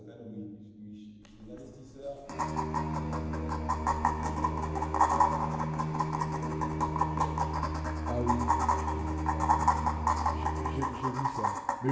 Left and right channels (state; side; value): identical; both; correlation 1.00